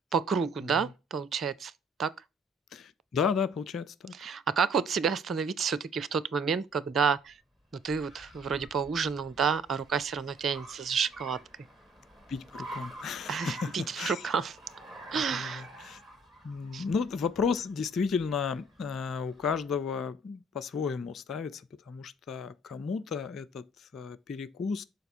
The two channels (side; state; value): both; normal; correlation 0.59